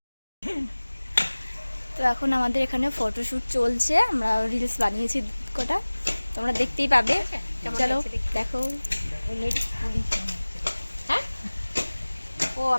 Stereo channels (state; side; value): inverted; both; correlation -1.00